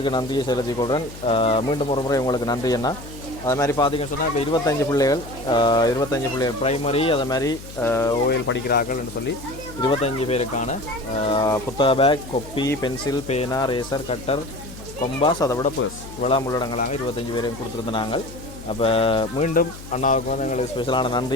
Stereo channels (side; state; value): left; noise; hum, 15 dB below the sound